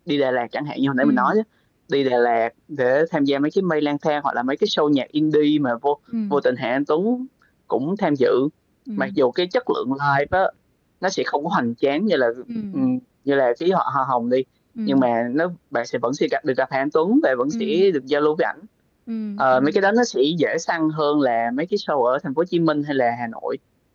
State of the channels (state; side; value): identical; both; correlation 1.00